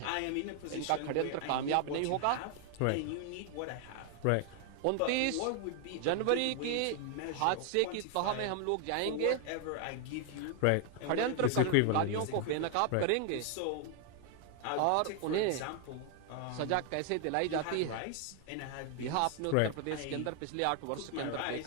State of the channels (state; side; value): different; both; correlation 0.00